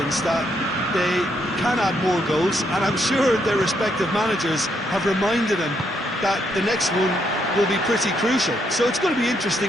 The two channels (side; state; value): both; normal; correlation 0.76